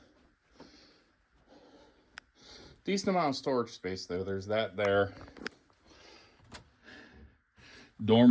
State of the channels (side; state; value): both; identical; correlation 1.00